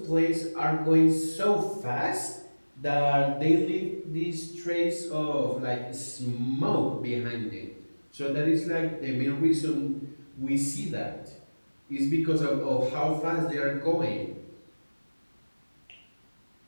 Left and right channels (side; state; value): both; inverted; correlation -1.00